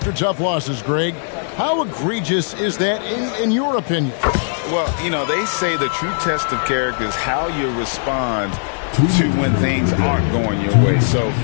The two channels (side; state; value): right; silent; digital silence